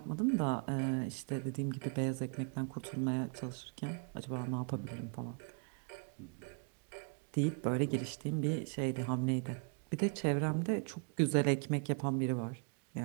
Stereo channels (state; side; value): quieter; left; 37.9 dB